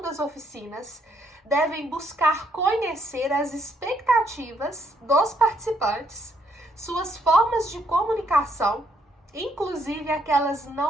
das oficinas devem buscar conhecer as expectativas dos participantes, suas formas de comunicação, inclusive aquelas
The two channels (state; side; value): normal; both; correlation 0.72